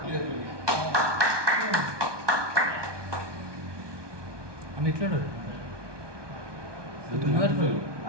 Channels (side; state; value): left; late; 1.2 ms